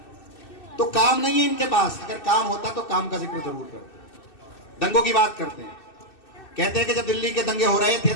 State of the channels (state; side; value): late; right; 2.6 ms